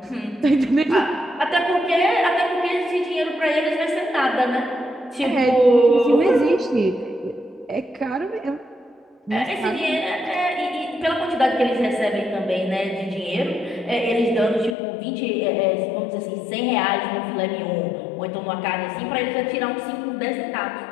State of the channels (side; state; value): right; drops out; at 14.8 s